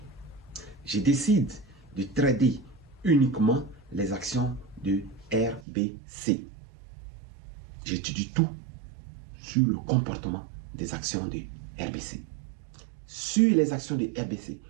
Je décide de trader uniquement les actions de RBC. J'étudie tout sur le comportement des actions de RBC. Sur les actions de RBC,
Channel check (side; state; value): left; drops out; at 5.6 s